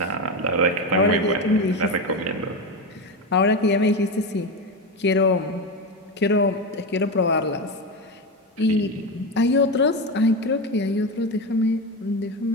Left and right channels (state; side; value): normal; both; correlation 0.17